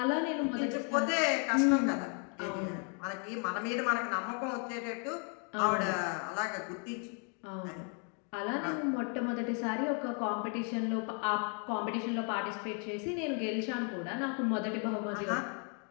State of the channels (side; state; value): right; quieter; 39.8 dB